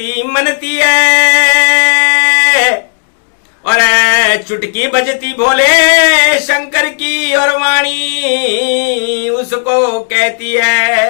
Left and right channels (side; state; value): right; silent; digital silence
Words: मनती है। और चुटकी बजती भोले शंकर की और वाणी उसको कहती